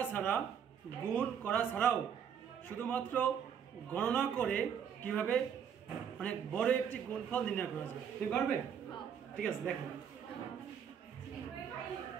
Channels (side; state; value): left; quieter; 8.0 dB